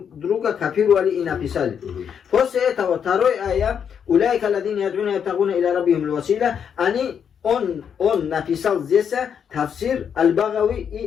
копировали и написали. После этого второй аят, «Уляйка ладина ядуна ябтагуна иля раббихим л-васила», он написал здесь тафсир Аль-Багави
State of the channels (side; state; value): right; quieter; 7.7 dB